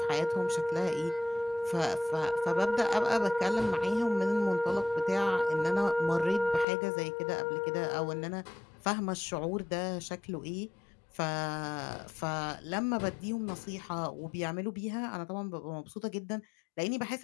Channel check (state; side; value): drops out; right; at 6.7 s